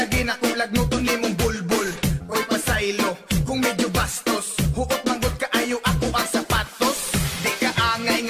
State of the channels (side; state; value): both; identical; correlation 1.00